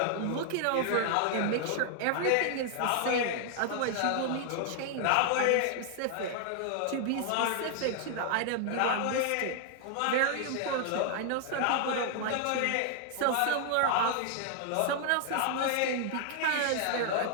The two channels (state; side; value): different; both; correlation 0.00